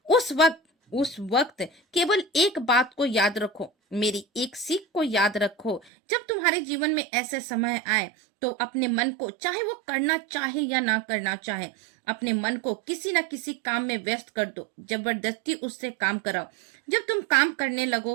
उस वक्त केवल एक बात को याद रखो, मेरी एक सीख को याद रखो। जब तुम्हारे जीवन में ऐसे समय आए, तो अपने मन को, चाहे वो करना चाहे या ना करना चाहे, अपने मन को किसी न किसी काम में व्यस्त कर दो, जबरदस्ती उससे काम कराओ। जब तुम काम करने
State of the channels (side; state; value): left; drops out; at 5.9 s